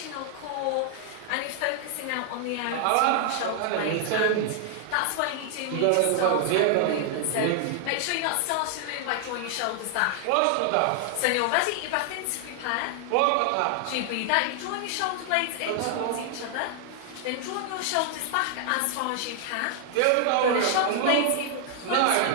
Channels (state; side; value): different; both; correlation 0.00